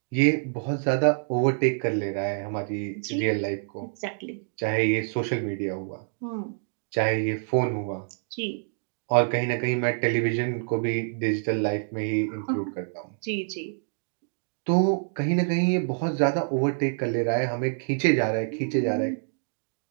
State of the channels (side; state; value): left; silent; digital silence